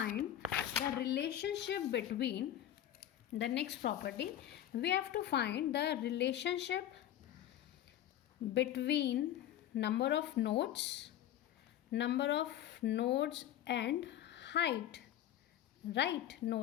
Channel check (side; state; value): right; quieter; 11.8 dB